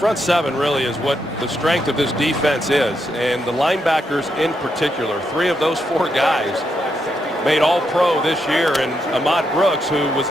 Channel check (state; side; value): normal; both; correlation 0.81